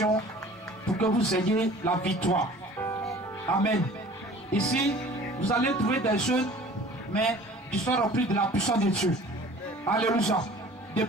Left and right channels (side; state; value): both; normal; correlation 0.47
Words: pour que vous ayez la victoire. Amen. Ici, vous allez trouver des jeunes, mais qui sont remplis de la puissance de Dieu. Alléluia.